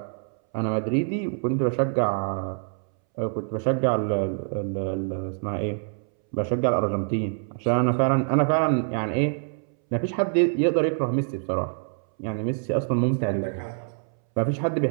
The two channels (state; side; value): silent; left; 61 dB below the other